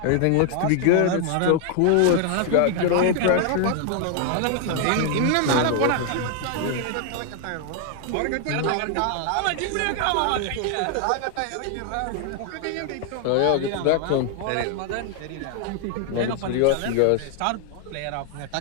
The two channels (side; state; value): both; different; correlation 0.00